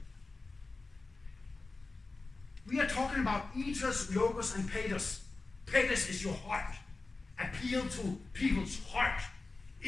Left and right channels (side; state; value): right; quieter; 3.6 dB